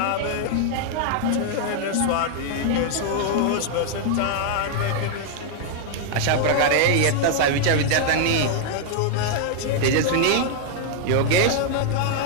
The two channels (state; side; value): different; both; correlation 0.00